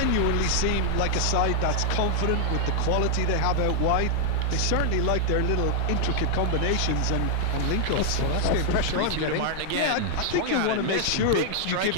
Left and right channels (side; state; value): both; different; correlation 0.00